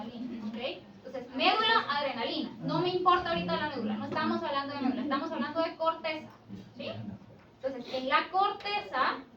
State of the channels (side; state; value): both; identical; correlation 1.00